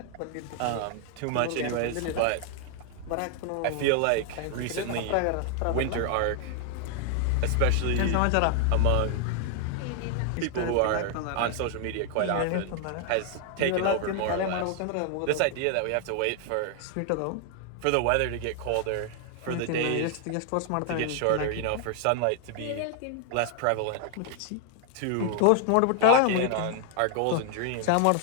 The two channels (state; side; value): different; both; correlation 0.00